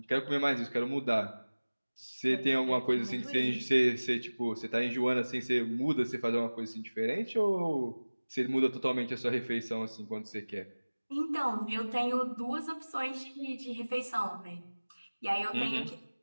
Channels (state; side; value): inverted; both; correlation -1.00